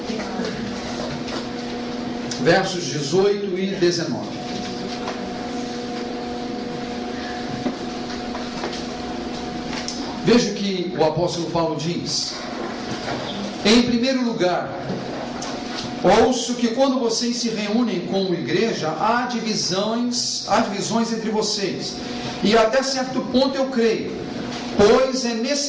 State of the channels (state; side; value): identical; both; correlation 1.00